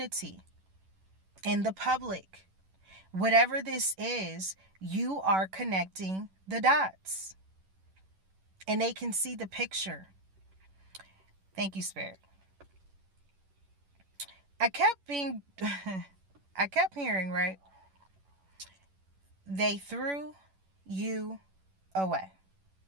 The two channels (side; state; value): left; late; 11 ms